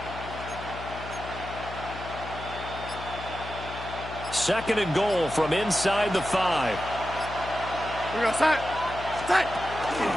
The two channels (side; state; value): left; noise; hum, 11 dB below the sound